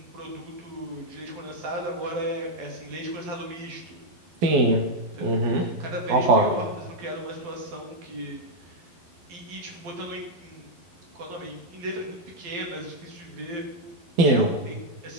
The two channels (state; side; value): late; left; 12 ms